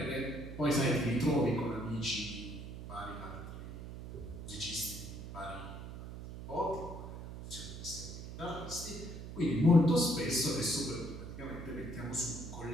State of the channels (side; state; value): right; noise; hum, 10 dB below the sound